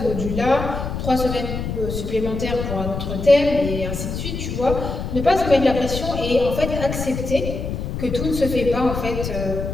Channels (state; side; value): noise; left; rumble, 5 dB below the sound